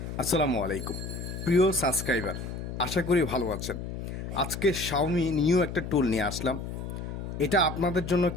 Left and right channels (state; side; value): noise; left; hum, 7 dB below the sound